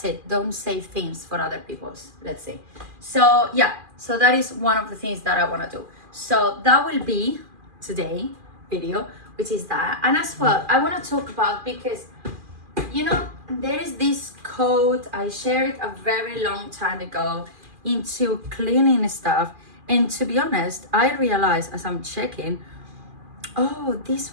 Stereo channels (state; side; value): late; left; 2.4 ms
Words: it. Don't say things for other people's, let's say. So yeah, so that is one of the things that I want to do. So that will be today video, which is that. And as well, I want to talk about, because you know, there is this code I shared a very long time ago into cleaning stuff, and to be honest, I realized as I'm checking, oh,